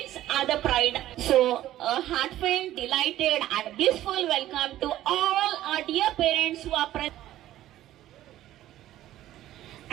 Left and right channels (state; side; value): quieter; left; 13.7 dB